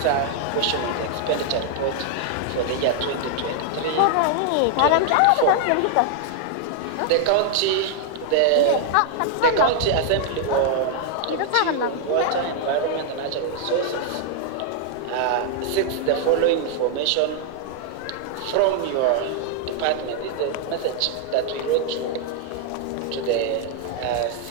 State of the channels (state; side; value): different; both; correlation 0.00